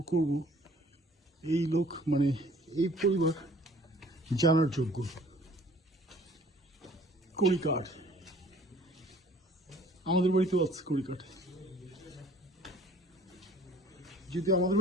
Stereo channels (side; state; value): both; normal; correlation 0.54